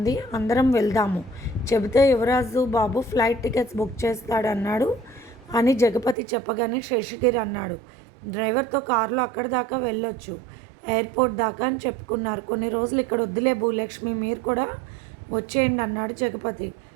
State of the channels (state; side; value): drops out; left; at 6.2 s